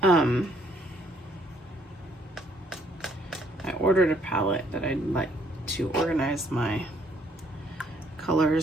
I ordered a palette that I'd like to organize my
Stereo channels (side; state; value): both; normal; correlation 0.66